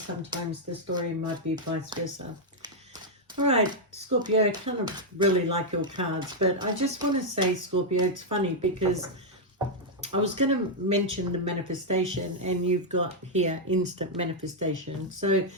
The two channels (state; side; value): normal; both; correlation -0.02